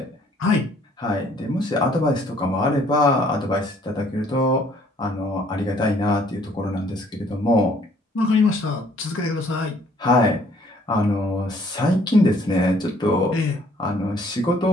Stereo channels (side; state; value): both; normal; correlation 0.61